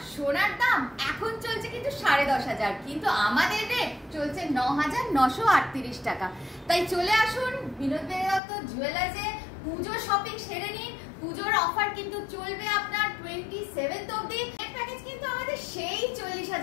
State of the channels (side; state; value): right; drops out; at 8.4 s